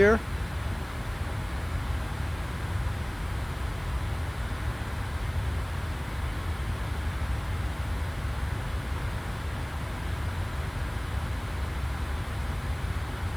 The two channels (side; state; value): right; noise; hiss, 26 dB below the sound